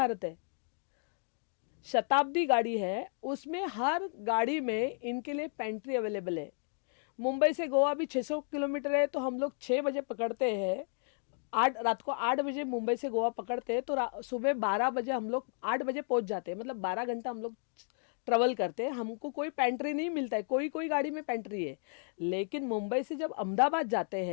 है। शताब्दी गाड़ी है, उसमें हर गाड़ी में इनके लिए पेंट्री अवेलेबल है। मुंबई से गोवा भी 600 किलोमीटर है, तो हम लोग 6 बजे पकड़ते हैं, रात को 8 बजे मुंबई से गोवा पकड़ते हैं, तो सुबह 12 बजे हम लोग 8 बजे पहुंच जाते हैं। मतलब 12 घंटा हम लोग ट्रेवल करते हैं। हमको कोई पेंट्री नहीं मिलता है, कोई गाड़ी में पेंट्री है। लेकिन मुंबई से जब अहमदाबाद जाते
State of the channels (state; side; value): silent; right; 56 dB below the other